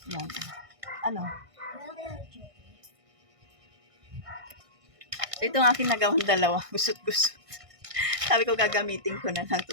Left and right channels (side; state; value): left; late; 1.6 ms